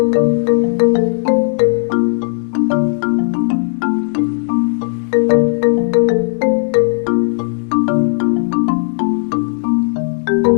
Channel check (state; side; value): silent; right; digital silence